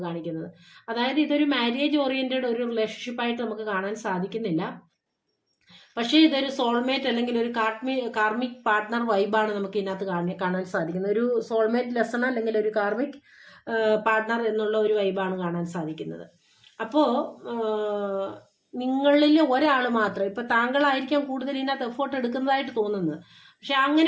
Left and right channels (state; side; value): identical; both; correlation 1.00